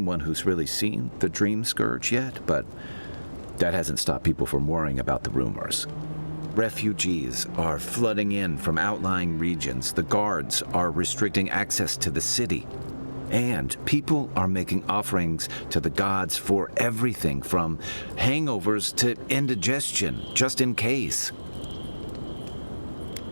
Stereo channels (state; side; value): inverted; both; correlation -1.00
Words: who's really seen the Dream Scourge yet, but that hasn't stopped people from worrying about the rumors. Refugees are flooding in from outlying regions. The guards are restricting access to the city. And people are making offerings to the gods for everything from hangovers to indigestion, just in case.